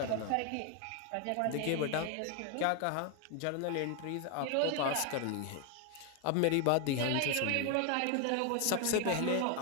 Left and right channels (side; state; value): both; different; correlation 0.01